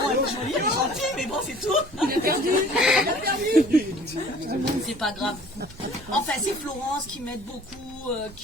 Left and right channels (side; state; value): right; noise; rumble, 20 dB below the sound